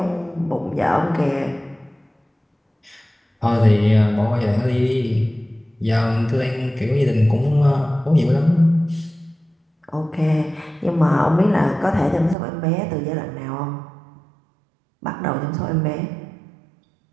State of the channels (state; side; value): drops out; left; at 12.4 s